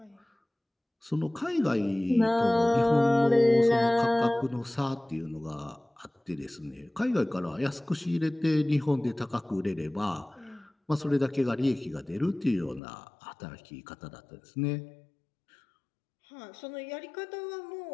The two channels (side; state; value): right; drops out; at 12.8 s